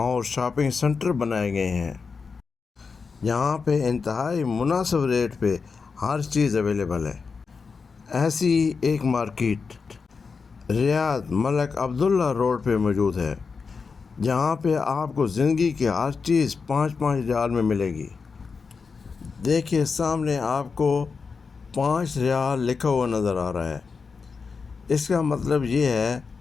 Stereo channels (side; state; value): right; quieter; 5.1 dB